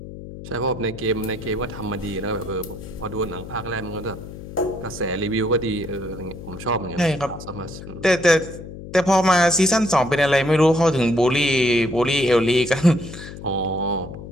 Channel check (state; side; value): noise; left; hum, 12 dB below the sound